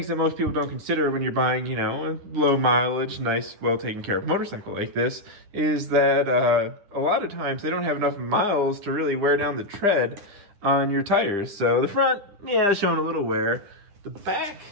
that most people don't consider when you're buying, you know, a low mileage, nice, well taken care of motorcycle like this is that a lot of times they don't have enough miles to really wear down the tread on your tires. So the front, yeah, showing a little wear. The back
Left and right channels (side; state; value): left; late; 9.9 ms